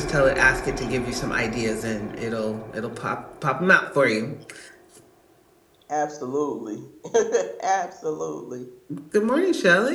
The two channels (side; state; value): both; identical; correlation 1.00